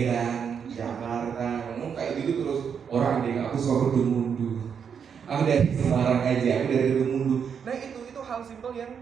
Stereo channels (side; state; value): left; quieter; 7.1 dB